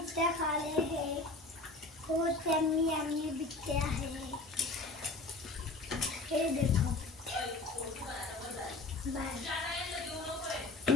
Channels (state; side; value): quieter; right; 3.1 dB